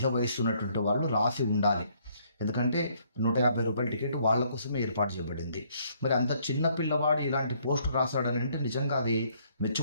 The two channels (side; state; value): both; inverted; correlation -0.66